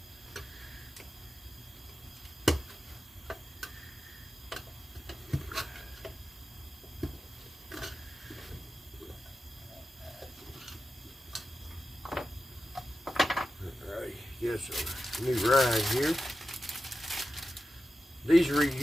this new ride here. These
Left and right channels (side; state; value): both; normal; correlation 0.92